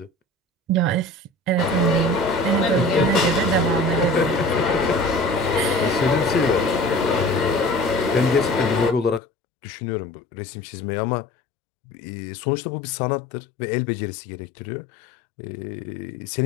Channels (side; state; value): right; drops out; at 9.2 s